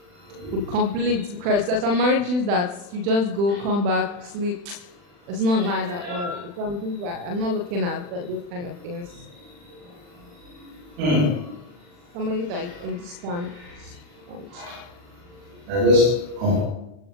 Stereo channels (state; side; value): late; left; 40 ms